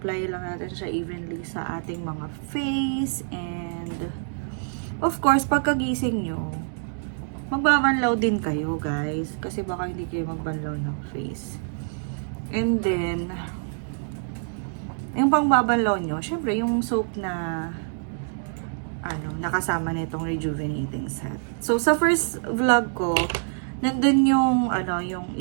lang natin siya evenly sa ating mga face. And, of course, pagkagising nyo, magbabanlaw din kayo, guys. Kasi baka hindi kayo magbanlaw ng face. And then, yung pangbabanlaw nyo, syempre, yung soap na, nakasama nitong rejuvenating set. So, sa first vlog ko, nandun yung, yung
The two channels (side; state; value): left; silent; digital silence